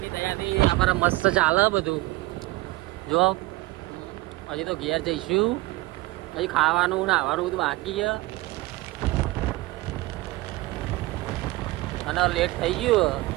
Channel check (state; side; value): quieter; left; 19.9 dB